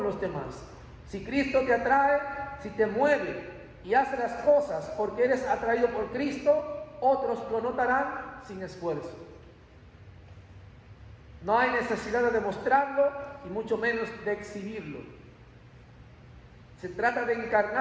los demás. Si Cristo te atrae, si te mueve y hace las cosas porque eres atraído por Cristo, otros lo notarán sin esfuerzo. No hay necesidad de demostrarlo y mucho menos de exhibirlo. Se trata de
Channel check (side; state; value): both; identical; correlation 1.00